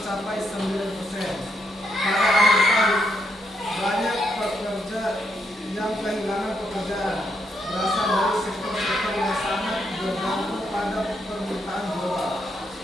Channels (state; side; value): normal; both; correlation 0.79